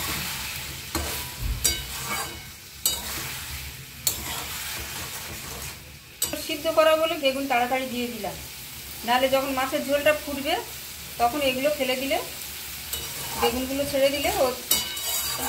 সিদ্ধ করা বলে বেগুন তাড়াতাড়ি দিয়ে দিলাম, নাহলে যখন মাছের ঝোলটা ফুটবে তখন এগুলো ফেলে দিলে, বেগুনগুলো ছেড়ে দিলে ও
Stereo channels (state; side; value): identical; both; correlation 1.00